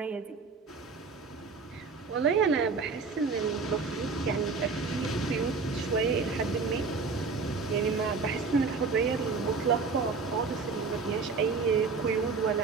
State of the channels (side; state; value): left; quieter; 4.7 dB